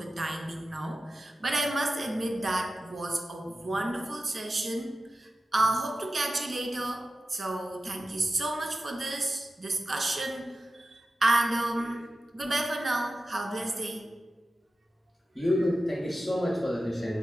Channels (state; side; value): normal; both; correlation 0.94